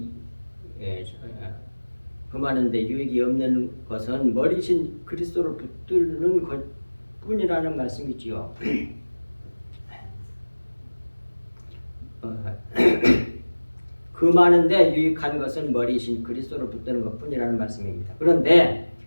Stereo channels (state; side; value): inverted; both; correlation -1.00